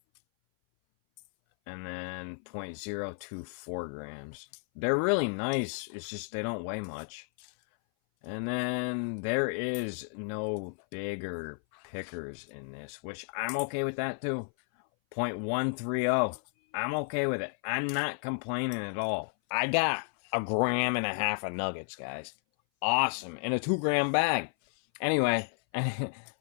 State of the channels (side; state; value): right; silent; 56 dB below the other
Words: And then 0.024 grams. They're really nice. It's just they don't weigh much. And then there is no bigger pickers in this, which I'm okay with that too. 0.130. I'm okay with it. I'm not complaining at all. I got 1.5 grams of nuggets, guys. Awesome. In a 2 gram bag. Anyway,